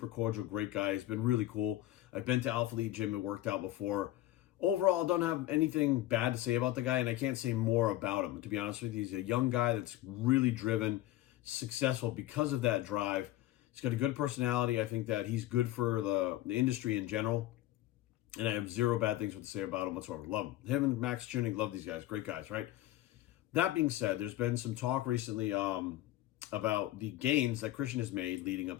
cordial, great guy. He's been really cool. I've been to Alpha Elite Gym and worked out before. Overall, I don't have anything bad to say about the guy, and I can't say more about him. To be honest with you, he's a young guy that's really driven, successful because of that drive. He's got a good personality. I think that he's good for the industry in general, and I have zero bad things to say about him whatsoever. Love him. Him and Max Tuning, love these guys. Great guys, right? That being said, there's been some talk recently about the gains that Christian has made leading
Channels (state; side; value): quieter; right; 14.9 dB